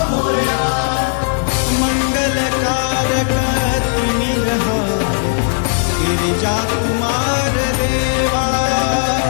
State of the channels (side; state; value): right; silent; 65 dB below the other